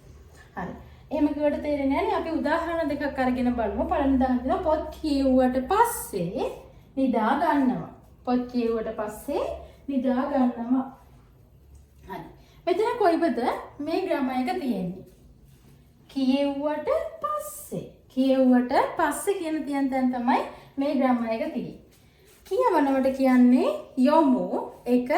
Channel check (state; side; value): identical; both; correlation 1.00